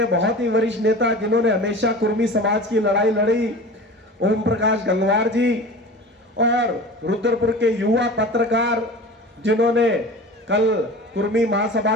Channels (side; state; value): both; normal; correlation 0.37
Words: बहुत ही वरिष्ठ नेता जिन्होंने हमेशा कुर्मी समाज की लड़ाई लड़ी, ओम प्रकाश गंगवार जी, और रुद्रपुर के युवा पत्रकार जिन्होंने कल कुर्मी